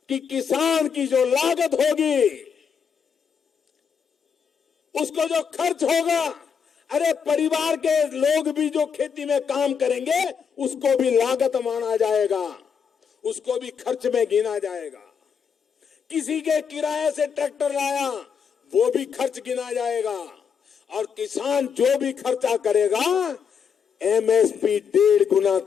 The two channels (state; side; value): quieter; right; 6.8 dB